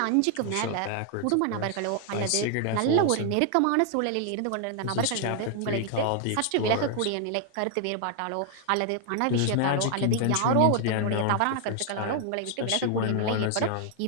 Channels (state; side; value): different; both; correlation 0.00